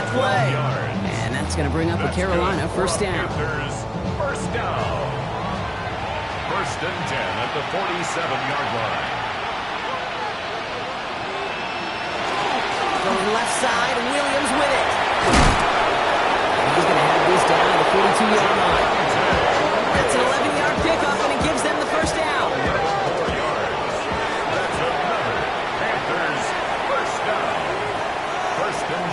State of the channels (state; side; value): identical; both; correlation 1.00